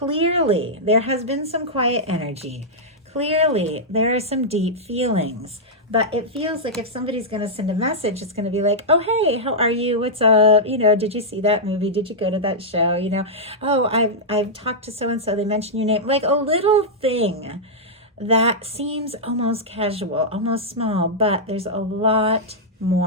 there has been some quiet energy. Clearly, there are some deep feelings. But it feels like if somebody's going to send a message, it's going to be like, oh, hey, how are you? What's up? You know, did you see that movie? Did you go to that show? You know, oh, I've talked to so-and-so. They mentioned your name. Like a little thing that seems almost casual, almost small, but there's a lot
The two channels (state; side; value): normal; both; correlation -0.08